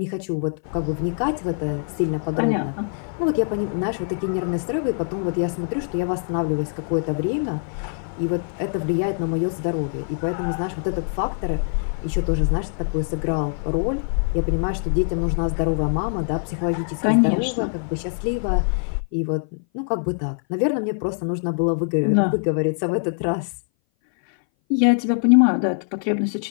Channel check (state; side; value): silent; right; 59 dB below the other